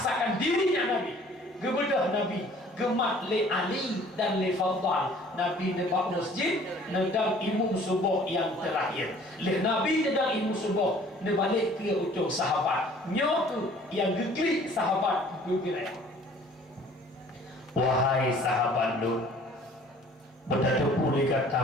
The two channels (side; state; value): both; normal; correlation 0.53